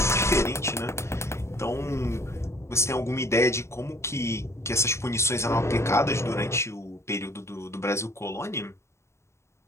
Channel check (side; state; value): right; late; 0.13 ms